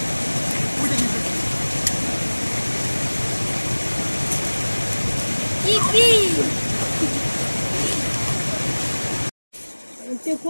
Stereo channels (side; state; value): both; inverted; correlation -1.00